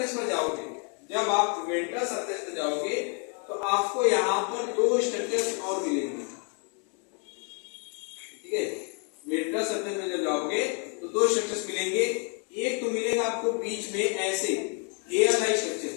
पर जाओगे, जब आप वेंट्रल सरफेस पर जाओगे तो आपको यहाँ पर दो स्ट्रक्चर्स और मिलेंगे, ठीक है। वेंट्रल सरफेस में जब जाओगे तो दो स्ट्रक्चर्स मिलेंगे। एक तो मिलेगा आपको बीच में ऐसे हेयर लाइक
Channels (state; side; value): quieter; right; 38.1 dB